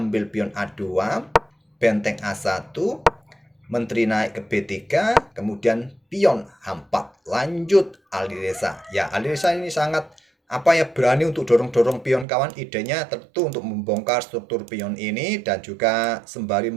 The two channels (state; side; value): drops out; left; at 12.2 s